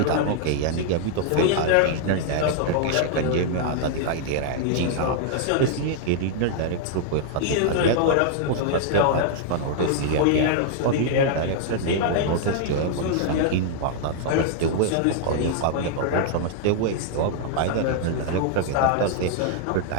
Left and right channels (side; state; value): both; different; correlation -0.01